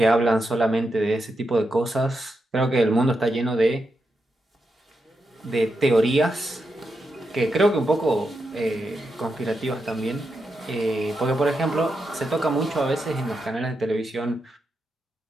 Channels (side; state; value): both; normal; correlation 0.86